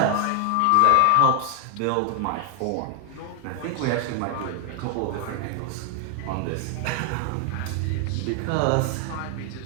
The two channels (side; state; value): both; different; correlation 0.00